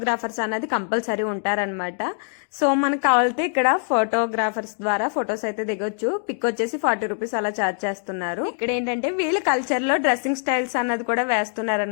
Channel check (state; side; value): silent; right; 58 dB below the other